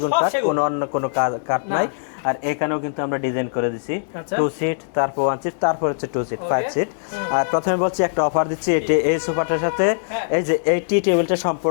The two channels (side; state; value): right; silent; digital silence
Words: সব কাঠ, সেগুন। কোনো অন্য কোনো কাঠ না। নাই। আর এখানেও কিন্তু আমরা ডিজাইন করে দিছি, আচ্ছা। 2 সিট, তারপর 1 সিট, তারপর হচ্ছে 2 সিট, Okay. 5 সিট। আর প্রথমে বলছি একটা অফার দিচ্ছি, এই সোফাটার সাথে হ্যাঁ। এই যে এই টি টেবিলটা